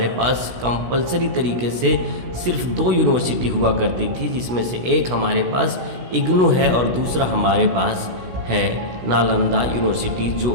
पास कंपलसरी तरीके से सिर्फ 2 यूनिवर्सिटी हुआ करती थी, जिसमें से एक हमारे पास इग्नू है और दूसरा हमारे पास है नालंदा यूनिवर्सिटी, जो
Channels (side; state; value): left; late; 16 ms